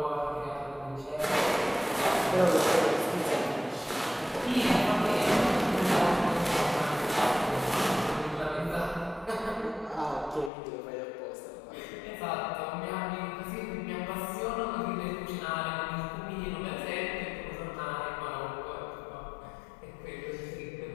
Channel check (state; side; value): drops out; right; at 10.5 s